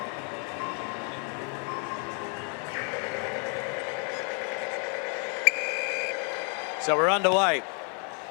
So we're underway.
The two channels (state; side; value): quieter; right; 39.5 dB